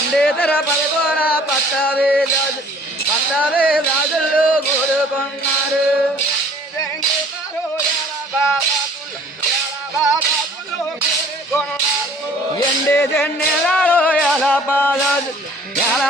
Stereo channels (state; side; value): normal; both; correlation 0.53